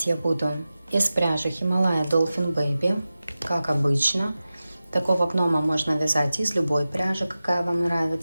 я буду из пряжи Himalaya Dolphin Baby, как обычно. Такого гнома можно вязать из любой пряжи, какая вам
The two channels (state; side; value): inverted; both; correlation -0.95